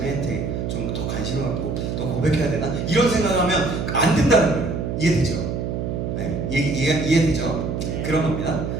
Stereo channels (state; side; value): noise; right; hum, 3 dB below the sound